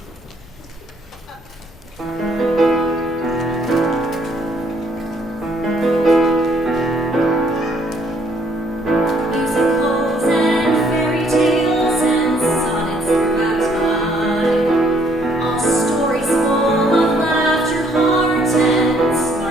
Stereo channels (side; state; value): both; normal; correlation 0.66